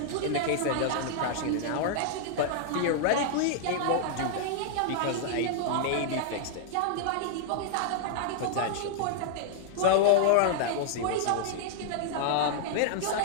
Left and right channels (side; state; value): both; different; correlation -0.01